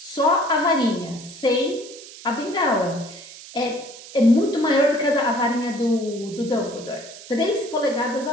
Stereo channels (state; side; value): noise; right; hiss, 16 dB below the sound